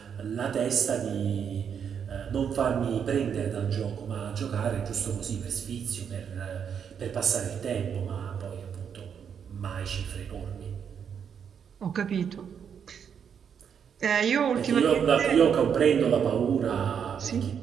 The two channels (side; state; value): left; quieter; 7.6 dB